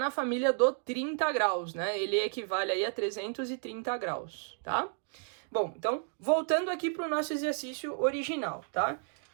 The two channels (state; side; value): silent; left; 56 dB below the other